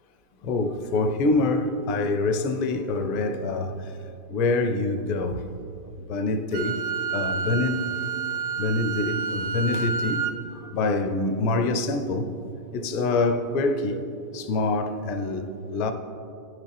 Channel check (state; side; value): late; left; 2.5 ms